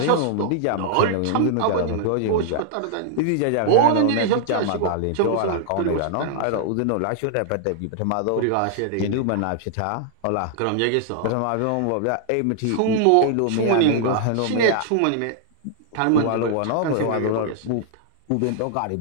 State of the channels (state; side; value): different; both; correlation -0.01